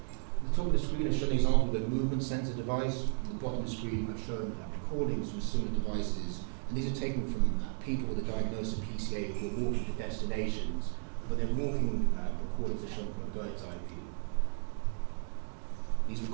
At the top of the screen I've shown an example of a movement sensor device. At the bottom of the screen I've shown recordings from similar devices, and these are taken from people with a diagnosis of PCA who are walking to destinations, but their walking recordings are shown from a bird's eye view. These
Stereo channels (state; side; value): silent; left; 55 dB below the other